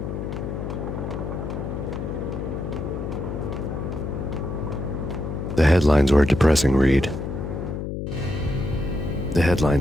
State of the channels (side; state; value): left; noise; hum, 5 dB below the sound